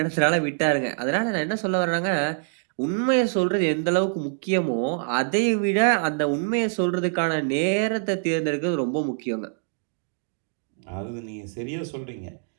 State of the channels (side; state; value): left; silent; digital silence